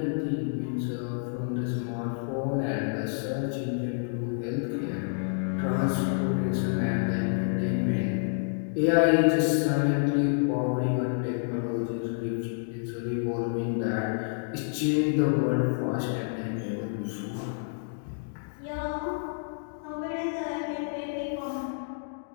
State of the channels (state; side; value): silent; right; digital silence